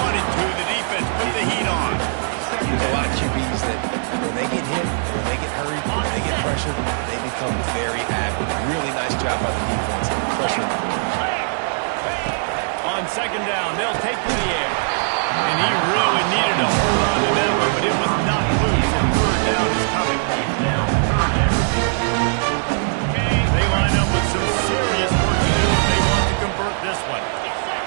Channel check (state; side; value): silent; left; digital silence